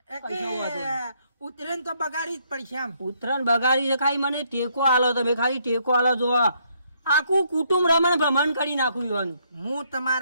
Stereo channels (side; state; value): both; inverted; correlation -0.71